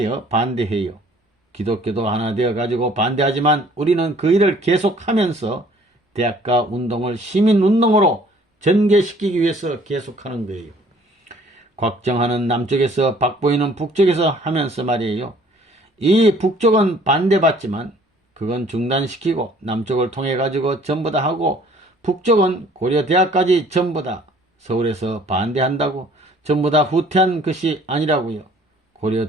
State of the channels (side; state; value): both; normal; correlation 0.56